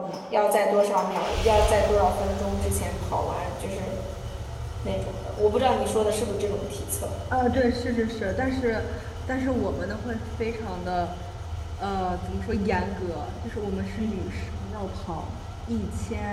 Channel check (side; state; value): both; identical; correlation 1.00